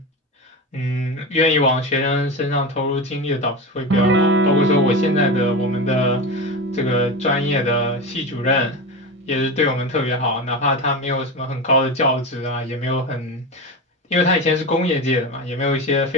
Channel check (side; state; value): both; normal; correlation 0.22